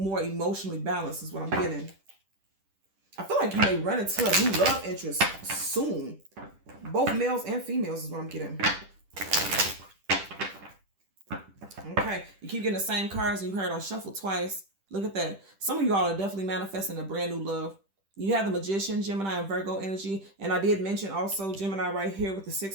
emotionally balanced, is what I'm getting. I feel like you may run into a new love interest soon. Both males and females is what I'm getting. Okay, you keep getting the same cards, and you heard I shuffled twice. Look at that. Some of you all are definitely manifesting a brand new love. You have the Magician, Gemini, and Virgo energy. And I did mention also Gemini right here with the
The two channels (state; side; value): late; left; 10 ms